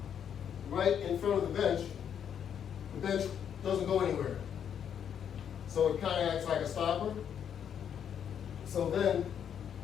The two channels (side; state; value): right; quieter; 8.5 dB